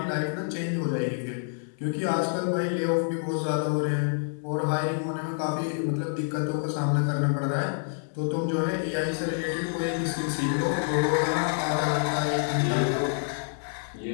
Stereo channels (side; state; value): right; silent; digital silence